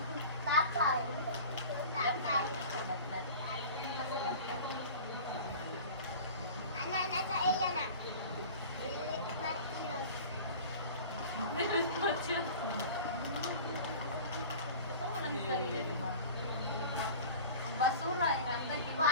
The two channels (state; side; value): inverted; both; correlation -0.38